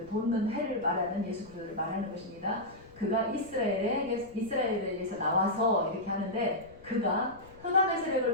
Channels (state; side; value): noise; left; rumble, 23 dB below the sound